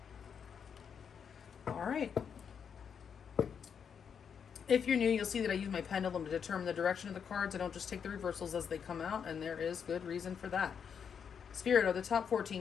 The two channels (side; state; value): right; quieter; 7.2 dB